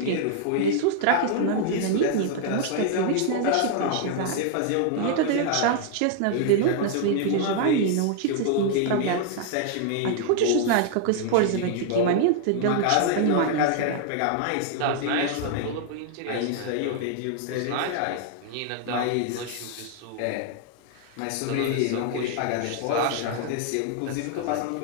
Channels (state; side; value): different; both; correlation 0.00